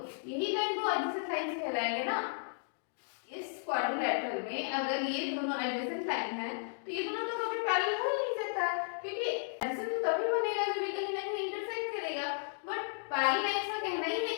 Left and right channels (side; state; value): right; silent; digital silence